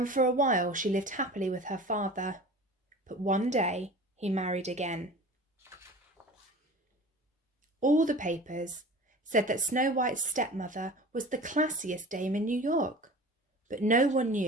for a while she lived happily with her father. But one day he married again. All the papers said that Snow White's stepmother was the classiest dame in New York. But no one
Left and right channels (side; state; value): both; normal; correlation 0.39